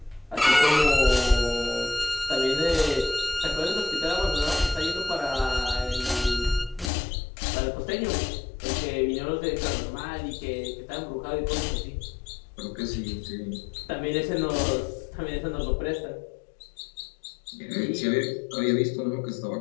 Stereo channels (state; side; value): drops out; right; at 6.9 s